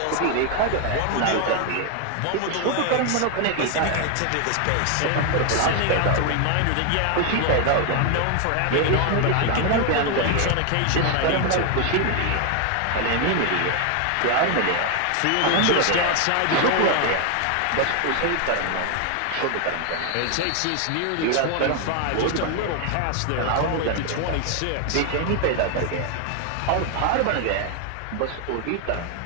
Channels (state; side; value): different; both; correlation 0.01